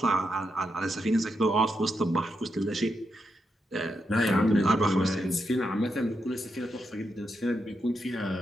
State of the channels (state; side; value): normal; both; correlation 0.84